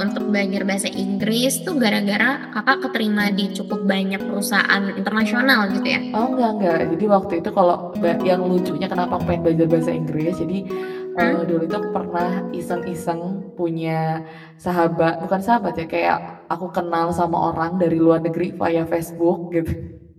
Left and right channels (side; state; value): both; identical; correlation 1.00